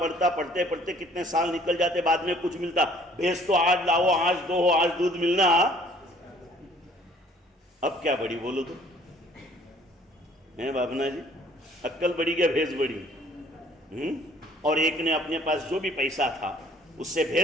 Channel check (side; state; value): both; normal; correlation 0.56